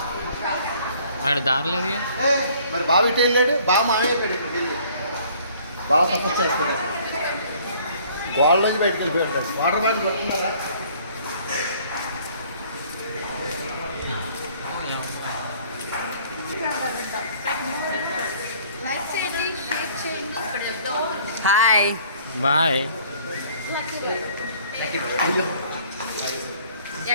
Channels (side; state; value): both; inverted; correlation -0.56